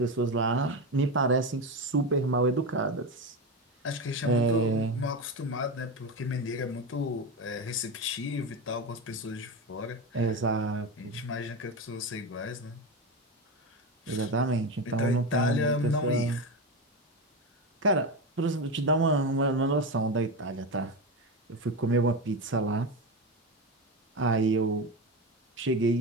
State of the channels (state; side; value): normal; both; correlation 0.18